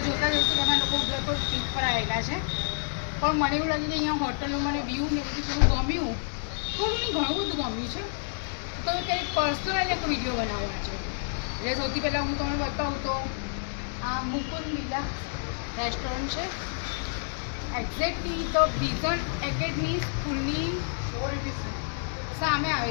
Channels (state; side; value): silent; right; digital silence